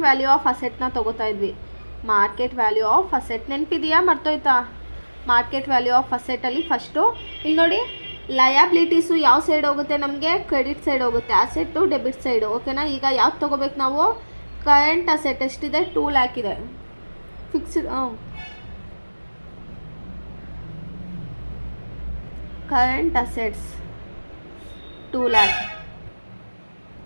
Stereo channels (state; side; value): inverted; both; correlation -1.00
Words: ವ್ಯಾಲ್ಯೂ ಆಫ್ ಅಸೆಟ್ನ ತೊಗೋತಾ ಇದ್ವಿ. ಮಾರ್ಕೆಟ್ ವ್ಯಾಲ್ಯೂ ಆಫ್ ಅಸೆಟ್ ನೆನಪಿದೆಯಾ, ಮರ್ತೋಯ್ತಾ. ಮಾರ್ಕೆಟ್ ವ್ಯಾಲ್ಯೂ ಆಫ್ ಅಸೆಟಲ್ಲಿ ಫಸ್ಟು ಇಲ್ಲಿ ನೋಡಿ, ಲಯಾಬಿಲಿಟೀಸು ಯಾವ ಸೈಡ್ ಹೋಗುತ್ತೆ, ನಮಗೆ ಕ್ರೆಡಿಟ್ ಸೈಡ್ ಹೋಗುತ್ತೆ, ಅಸೆಟ್ಟು ಡೆಬಿಟ್ ಸೈಡು, ಓಕೆನಾ. ಈಗ ಯಾವ್ದು ತೊಗೋಬೇಕು ನಾವು, ಕರೆಂಟ್ ಅಸೆಟ್ ಎಷ್ಟಿದೆ, 2 lakh ಇದೆ. Fixed current assets 2 lakh.